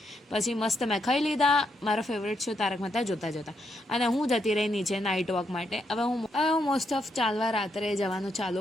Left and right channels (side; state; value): both; normal; correlation 0.79